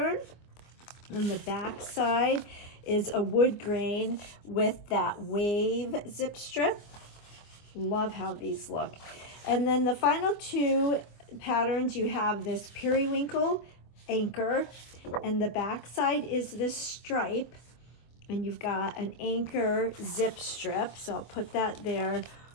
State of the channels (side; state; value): right; late; 24 ms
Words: on the back side is a wood grain with that wave zip strip. Love how these look. And then the final 2 patterns, you have this periwinkle anchor, and the back side is this stripe, and you've got an anchor zip strip. So I'll put that there,